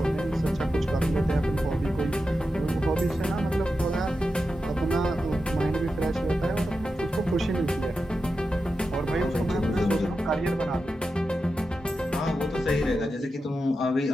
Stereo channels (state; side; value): normal; both; correlation 0.90